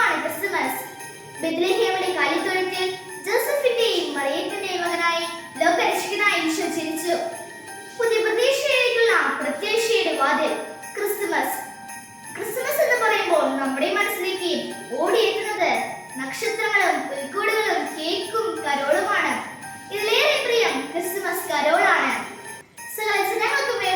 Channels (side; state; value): both; identical; correlation 1.00